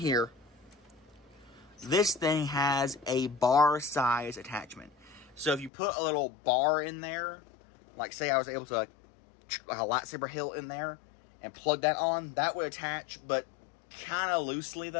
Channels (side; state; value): right; drops out; at 5.7 s